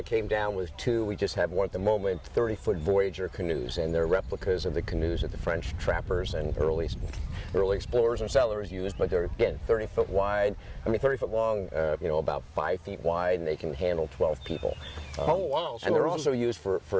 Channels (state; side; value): identical; both; correlation 1.00